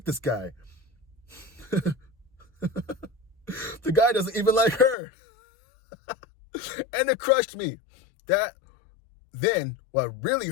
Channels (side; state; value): right; drops out; at 5.0 s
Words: this guy. The guy doesn't even like her. And it crushed me. Then what really